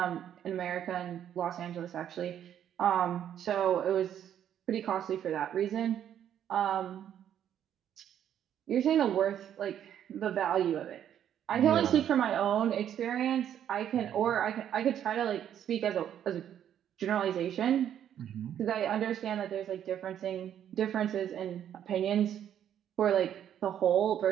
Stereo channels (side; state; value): left; quieter; 10.0 dB